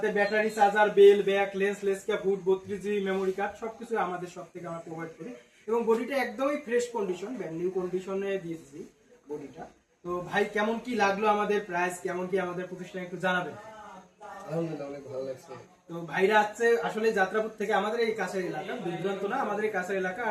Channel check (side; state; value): both; identical; correlation 1.00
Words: battery, charger, bell, back, less cap, hood, 32GB memory card, সবকিছু আমাদের সব থেকে আমরা প্রোভাইড করি। এবং বডিটা একদমই ফ্রেশ কন্ডিশন, ব্র্যান্ড নিউ কন্ডিশনে দিয়েছি বডিটা। তো ভাই, কেমন কি লাগলো আমাদের প্রাইস, কেমন কি আমাদের প্রতিষ্ঠান একটু জানাবেন? আলহামদুলিল্লাহ, অনেক ভালো লাগছে। তো ভাইরা আছে আসলে যাত্রাপুর থেকে, আমাদের এই কাছের এলাকা, বিভ্রান্ত না, আমাদের এই কাছের এলাকা।